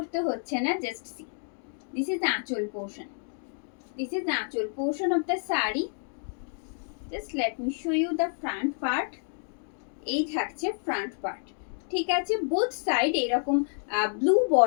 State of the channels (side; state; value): right; silent; digital silence